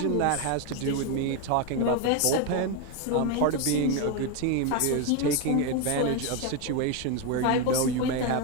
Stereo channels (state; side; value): different; both; correlation 0.03